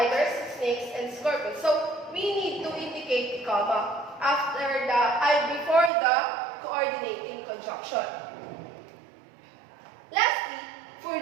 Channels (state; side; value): drops out; left; at 5.9 s